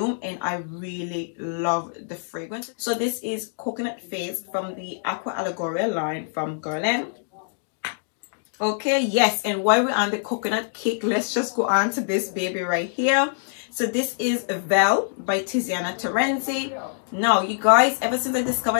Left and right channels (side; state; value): right; silent; digital silence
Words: and I really love the fragrance. So this is Coconut Fizz from the Aqua Allegoria line from Guerlain. Okay, yes, and while we're on the coconut cake, let's just go on to this baby right here. So this is Vele by Tiziana Terenzi. Now, you guys, ever since I